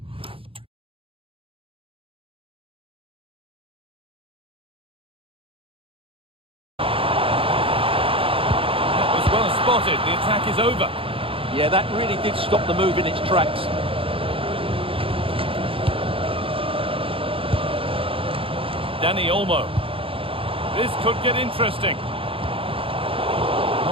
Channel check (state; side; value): late; left; 0.26 ms